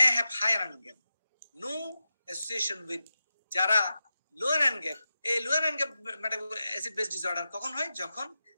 have high anion gap, no association with যারা low anion gap। এই low anion gap metabolic acid base disorder কখন হয়? যখন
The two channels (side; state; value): both; inverted; correlation -0.91